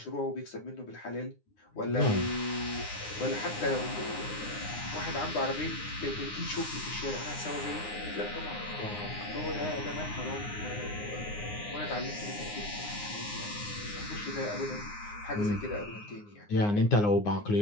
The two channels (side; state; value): right; late; 9.7 ms